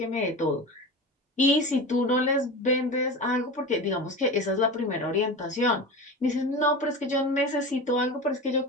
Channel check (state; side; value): normal; both; correlation 0.28